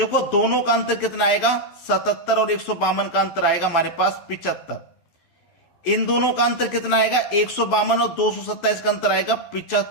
दोनों का अंतर कितना आएगा, 77 और 152 का अंतर आएगा हमारे पास 75। इन दोनों का अंतर कितना आएगा, 152 और 227 का अंतर आएगा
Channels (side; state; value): right; late; 12 ms